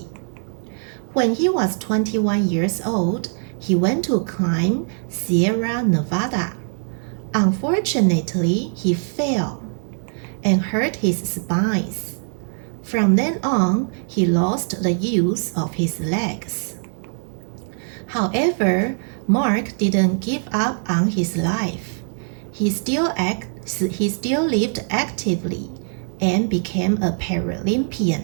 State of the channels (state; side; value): silent; left; 64 dB below the other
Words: When he was 21 years old, he went to climb Sierra Nevada. Unfortunately, he fell and hurt his spines. From then on, he lost the use of his legs. However, Mark didn't give up on his life. He still lived actively and became a